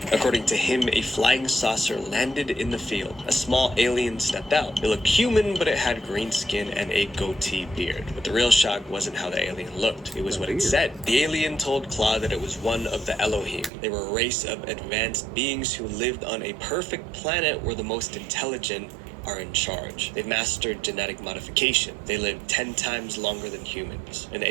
According to him, a flying saucer landed in the field. A small alien stepped out. It looked human, but it had green skin and a goatee beard. But the real shock wasn't how the alien looked. It was what it said. The alien told Claude that it was one of the Elohim. They were a race of advanced beings who lived on a perfect planet where the most intelligent are in charge. They've mastered genetic modification. They live 10 times longer than humans. An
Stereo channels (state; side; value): drops out; left; at 13.7 s